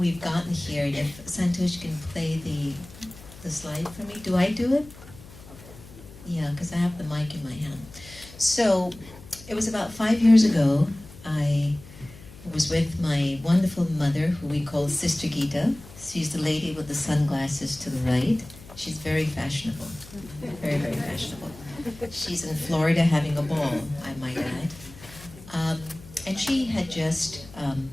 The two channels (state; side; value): noise; left; hum, 19 dB below the sound